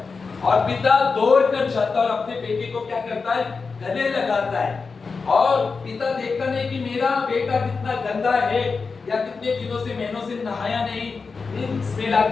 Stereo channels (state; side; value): quieter; right; 4.7 dB